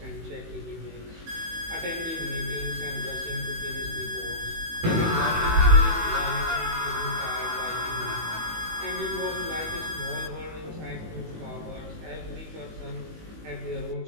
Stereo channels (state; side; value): late; left; 18 ms